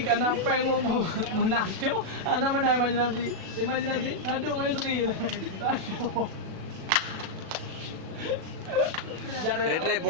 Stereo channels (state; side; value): late; left; 37 ms